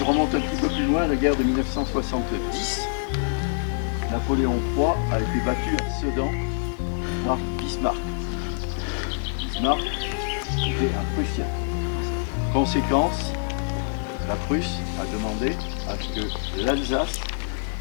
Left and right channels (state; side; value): silent; right; digital silence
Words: remonte un petit peu plus loin, la guerre de 1970, Napoléon III a été battu à Sedan par Bismarck. Bismarck était un Prussien. Conséquence, la Prusse a demandé à ce que l'Alsace